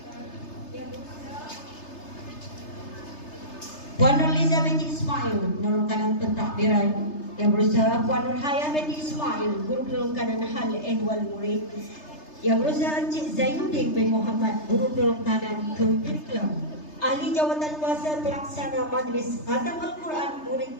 Puan Nurliza binti Ismail, guru kanan pentadbiran. Yang berusaha Puan Nurhaya binti Ismail, guru kanan hal ehwal murid. Yang berusaha Encik Zainuddin bin Muhammad, guru kanan curriculum. Ahli jawatan kuasa pelaksana majlis khatam Al-Quran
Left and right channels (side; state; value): right; late; 3.3 ms